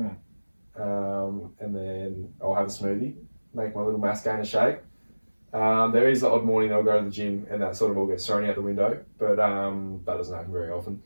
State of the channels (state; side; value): inverted; both; correlation -1.00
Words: then I'll have a smoothie, make my little mascara shake. There is the odd morning I'll go to the gym and that sort of all gets thrown out the window, but that doesn't happen very often.